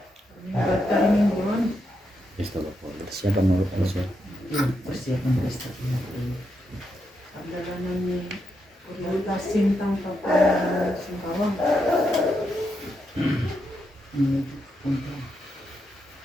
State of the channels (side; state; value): both; normal; correlation 0.82